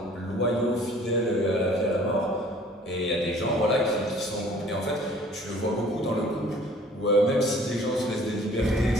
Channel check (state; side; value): normal; both; correlation 0.53